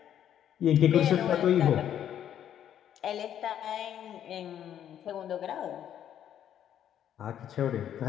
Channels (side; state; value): right; quieter; 10.1 dB